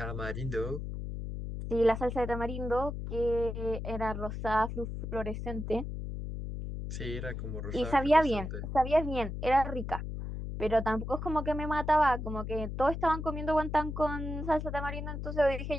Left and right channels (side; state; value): left; noise; hum, 6 dB below the sound